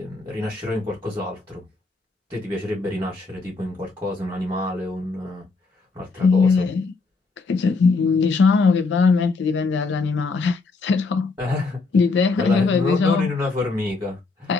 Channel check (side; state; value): right; quieter; 4.0 dB